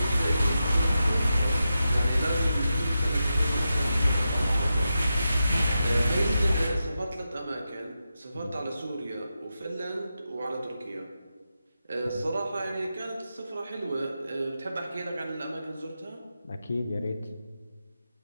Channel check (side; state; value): both; inverted; correlation -0.90